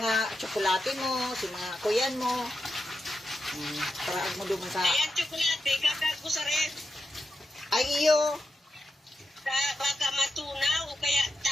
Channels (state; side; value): normal; both; correlation 0.89